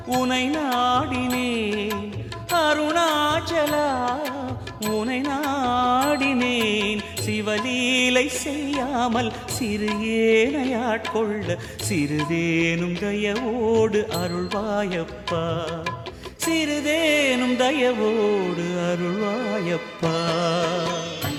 உனை நாடினேன் அருணாச்சலா உனை நாடினேன் சிவலீலை செய்யாமல் சிறு ஏனையாட்கொள்ள சிறிதேனும் தயவோடு அருள்வாயப்பா சிறிதேனும் தயவோடு அருள்வாயப்பா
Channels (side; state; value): both; identical; correlation 1.00